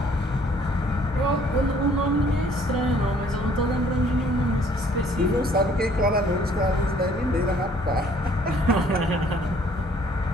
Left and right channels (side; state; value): both; normal; correlation 0.60